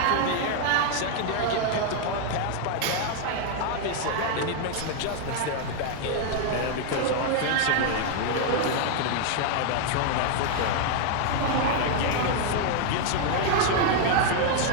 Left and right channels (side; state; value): both; different; correlation 0.00